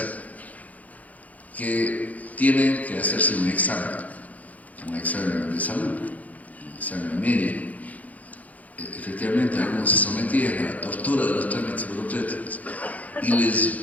Que tienen que hacerse un examen de salud, un examen médico. Efectivamente, algunos se sometían a la tortura de los trámites burocráticos y les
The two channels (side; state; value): right; late; 0.075 ms